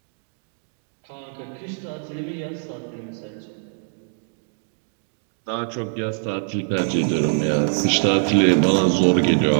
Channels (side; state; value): left; silent; digital silence